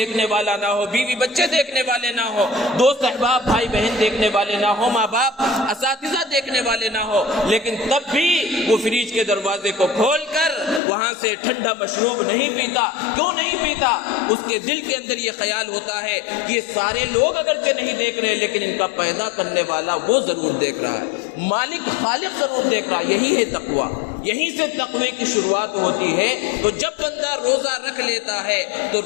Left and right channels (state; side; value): drops out; right; at 10.8 s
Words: والا نہ ہو، بیوی بچے دیکھنے والے نہ ہو، دوست احباب بھائی بہن دیکھنے والے نہ ہو، ماں باپ اساتذہ دیکھنے والے نہ ہو، لیکن تب بھی وہ فریج کے دروازے کو کھول کر وہاں سے ٹھنڈا مشروب نہیں پیتا۔ کیوں نہیں پیتا؟ اس کے دل کے اندر یہ خیال ہوتا ہے کہ یہ سارے لوگ اگرچہ نہیں دیکھ رہے لیکن ان کا پیدا کرنے والا وہ ضرور دیکھ رہا ہے، مالک خالق ضرور دیکھ رہا ہے۔ یہی ہے تقوی۔ یہیں سے تقوی کی شروعات ہوتی ہے۔ تو جب بندہ روزہ رکھ لیتا ہے تو